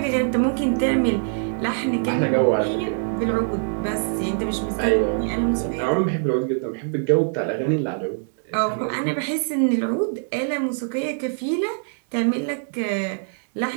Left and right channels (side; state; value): left; silent; digital silence